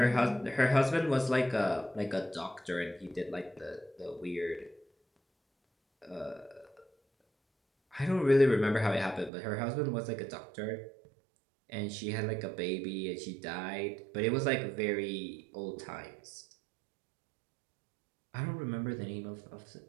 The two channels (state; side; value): drops out; left; at 9.3 s